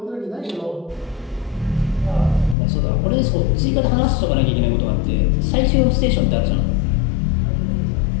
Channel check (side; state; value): right; drops out; at 2.6 s